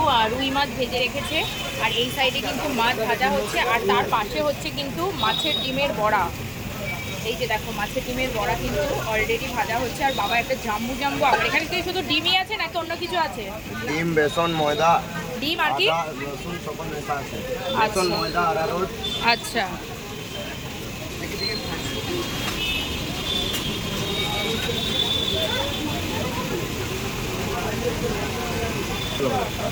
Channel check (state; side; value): identical; both; correlation 1.00